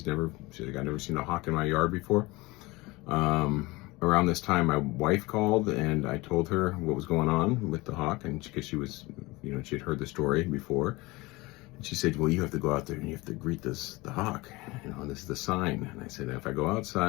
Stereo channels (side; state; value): right; quieter; 22.4 dB